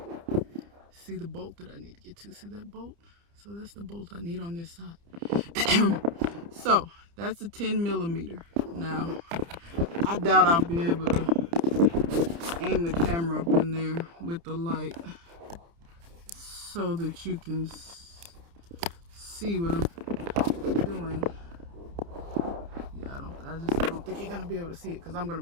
see the bolt that I need to get to. See that bolt? So that's the bolt I need on this side. So that's a 10 millimeter. Now, I doubt I'll be able to aim the camera up in there with the light so that you can see what I'm doing. Yeah, I don't think you're gonna be able to see it because I'm gonna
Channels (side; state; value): left; late; 29 ms